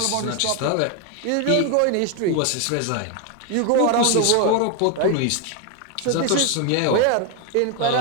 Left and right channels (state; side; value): different; both; correlation 0.01